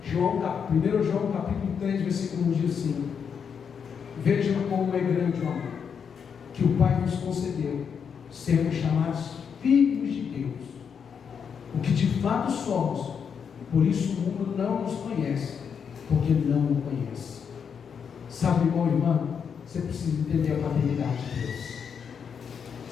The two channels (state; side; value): quieter; right; 6.9 dB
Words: 1 João capítulo 3, versículo 1 diz assim: vejam como é grande o amor que o Pai nos concedeu, sermos chamados filhos de Deus, o que de fato somos. Por isso o mundo não nos conhece, porque não o conhece. Sabe, irmão e irmã, você precisa entender a paternidade de Deus.